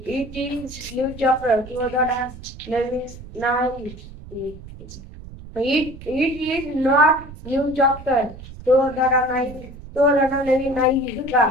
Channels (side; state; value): right; noise; rumble, 15 dB below the sound